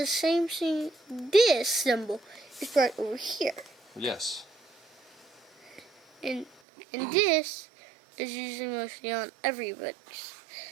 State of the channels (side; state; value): left; drops out; at 6.5 s